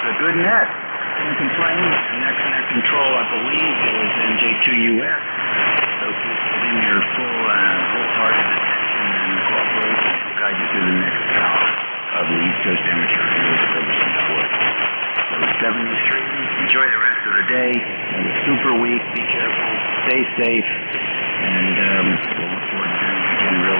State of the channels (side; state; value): both; inverted; correlation -1.00